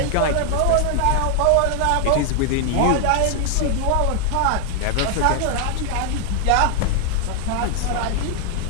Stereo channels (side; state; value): both; different; correlation 0.00